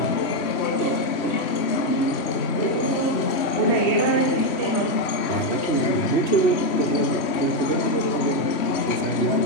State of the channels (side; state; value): right; late; 3.1 ms